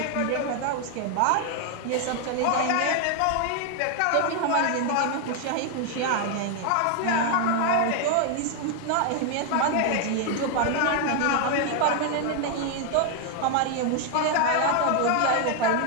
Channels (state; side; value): different; both; correlation 0.00